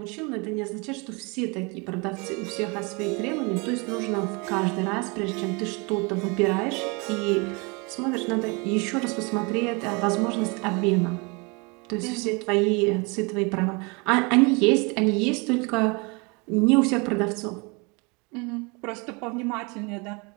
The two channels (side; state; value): left; quieter; 29.7 dB